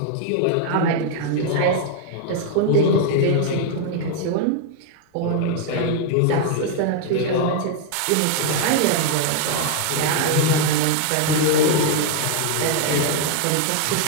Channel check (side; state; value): both; different; correlation 0.00